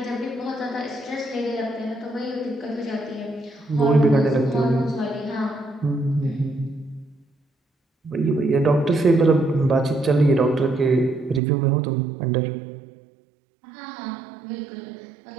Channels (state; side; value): drops out; left; at 11.4 s